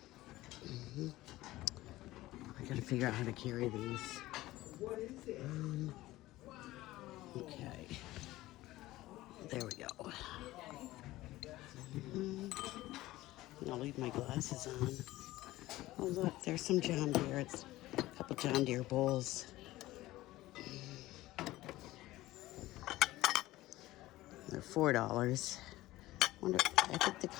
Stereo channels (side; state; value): right; quieter; 17.1 dB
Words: I gotta figure out how to carry these. Okay. There we go. I'll leave my glasses on. Oh look, there's some John Deere. It's a couple John Deere bowls. They're $4. I think the